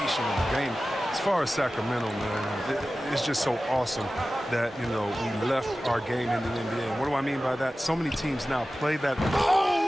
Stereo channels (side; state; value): both; normal; correlation 0.95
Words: of the game. As far as Sacramento, man, it's just so awesome that we left our game in the NBA. And what do I mean by that? So many teams now play that.